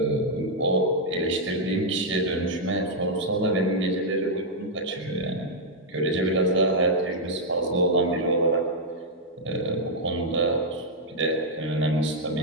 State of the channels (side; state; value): both; normal; correlation -0.03